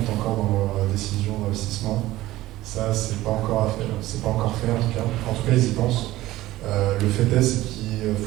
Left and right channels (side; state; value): left; quieter; 16.5 dB